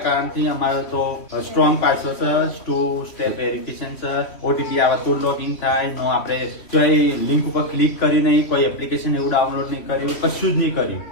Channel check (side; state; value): right; late; 3.1 ms